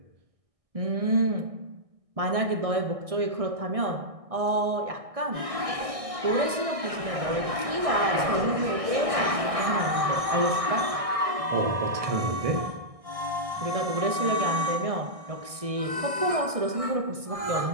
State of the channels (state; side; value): late; left; 1.6 ms